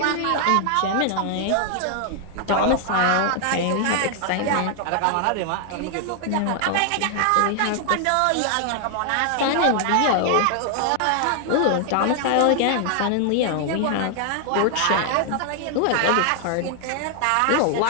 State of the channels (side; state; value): both; different; correlation 0.00